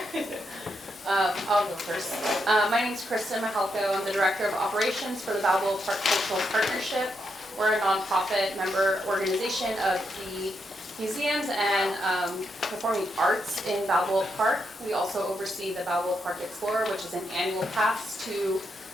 I'll go first. My name is Kristen Mahalko. I'm the Director of Operations for the Balba Park Cultural Partnership. We're a nonprofit member organization of the museums and performing arts in Balboa Park. We also oversee the Balboa Park Explorer, which is an annual pass to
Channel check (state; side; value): normal; both; correlation 0.81